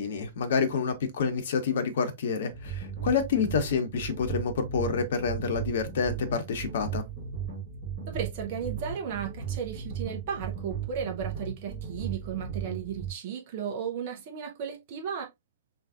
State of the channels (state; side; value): inverted; both; correlation -0.35